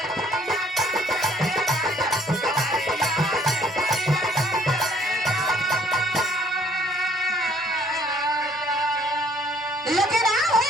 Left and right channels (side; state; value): both; normal; correlation 0.61